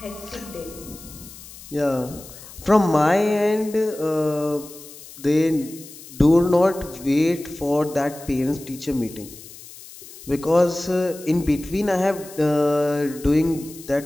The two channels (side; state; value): left; noise; hiss, 17 dB below the sound